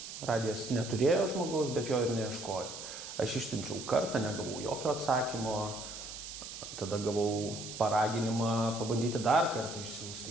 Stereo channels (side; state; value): right; noise; hiss, 10 dB below the sound